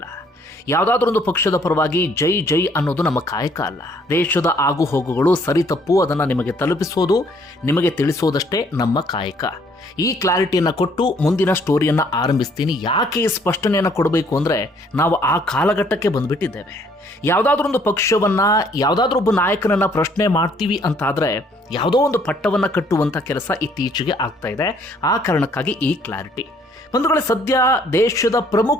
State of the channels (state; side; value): normal; both; correlation 0.63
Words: ಯಾವುದಾದ್ರೊಂದು ಪಕ್ಷದ ಪರವಾಗಿ ಜೈ ಜೈ ಅನ್ನೋದು ನಮ್ಮ ಕಾಯಕ ಅಲ್ಲ. ದೇಶದ ಆಗು ಹೋಗುಗಳು ಸರಿ ತಪ್ಪು ಅದನ್ನು ನಿಮಗೆ ತಲುಪಿಸೋದು, ನಿಮಗೆ ತಿಳಿಸೋದಷ್ಟೇ ನಮ್ಮ ಕಾಯಕ. ಈ ಕ್ಲಾರಿಟಿಯನ್ನು ಕೊಟ್ಟು ಮುಂದಿನ ಸ್ಟೋರಿಯನ್ನು ಆರಂಭಿಸ್ತೀನಿ. ಯಾಕೆ ಈ ಸ್ಪಷ್ಟನೆಯನ್ನು ಕೊಡಬೇಕು ಅಂದರೆ, ನಾವು ಆ ಕಾಲಘಟ್ಟಕ್ಕೆ ಬಂದುಬಿಟ್ಟಿದ್ದೇವೆ. ಯಾವುದಾದ್ರೊಂದು ಪಕ್ಷವನ್ನು, ಯಾವುದಾದ್ರೊಬ್ಬ ನಾಯಕನನ್ನು ಪ್ರಶ್ನೆ ಮಾಡ್ತೀವಿ ಅಂತಾದರೆ ಯಾವುದೋ ಒಂದು ಪಟ್ಟವನ್ನು ಕಟ್ಟುವಂಥ ಕೆಲಸ ಇತ್ತೀಚೆಗೆ ಆಗ್ತಾ ಇದೆ. ಆ ಕಾರಣಕ್ಕಾಗಿ ಈ ಕ್ಲಾರಿಟಿ. ಬಂಧುಗಳೇ, ಸದ್ಯ ದೇಶದ